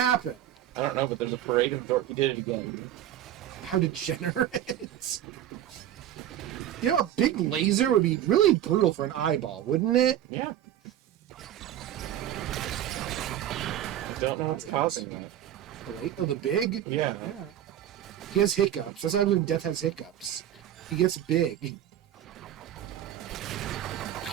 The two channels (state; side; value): quieter; left; 11.5 dB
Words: I don't know, but there's a parade of dorks. He did it again. How degenerate. You know, a big laser would be really brutal for an eyeball, wouldn't it? Yeah. I don't know what's causing that. Oh, the big? Yeah. Yeah. He has hiccups. That's why when Death has hiccups. He gets big.